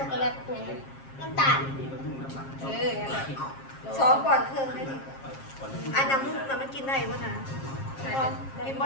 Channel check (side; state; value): right; late; 7.4 ms